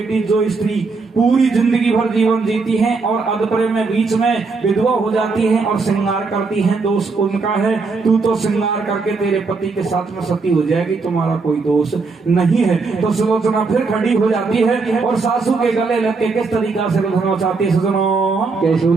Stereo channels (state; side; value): quieter; left; 4.2 dB